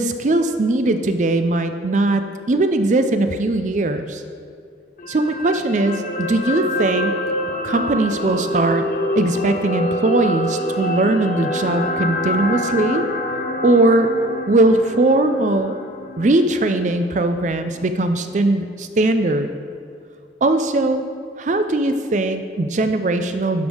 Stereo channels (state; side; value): normal; both; correlation 0.48